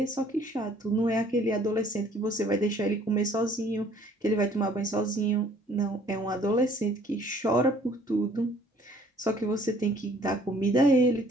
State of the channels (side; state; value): both; normal; correlation 0.57